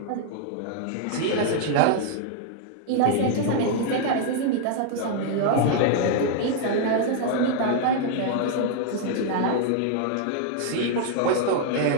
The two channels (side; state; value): both; different; correlation 0.00